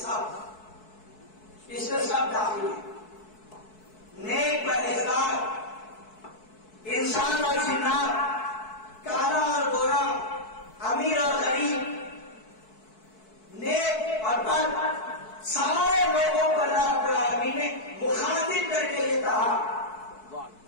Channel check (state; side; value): late; right; 4.6 ms